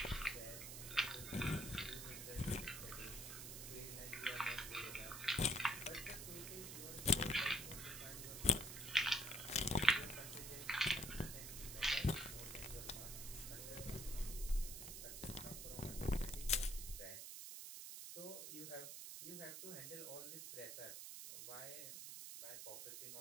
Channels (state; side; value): noise; right; hiss, 7 dB below the sound